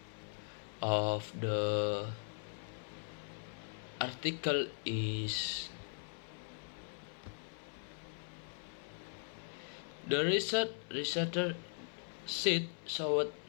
of the article is the researcher sheet showed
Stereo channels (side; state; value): right; silent; 51 dB below the other